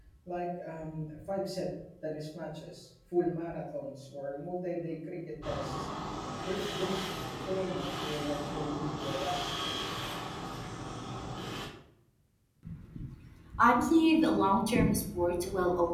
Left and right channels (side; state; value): both; identical; correlation 1.00